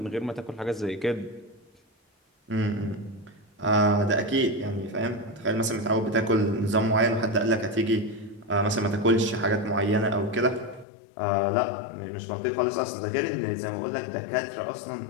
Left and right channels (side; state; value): right; drops out; at 10.9 s